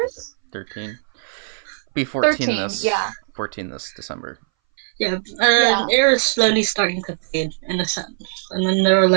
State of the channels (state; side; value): silent; left; 62 dB below the other